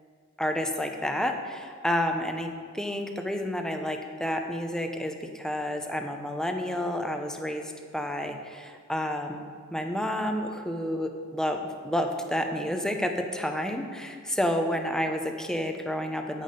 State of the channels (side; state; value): both; normal; correlation 0.70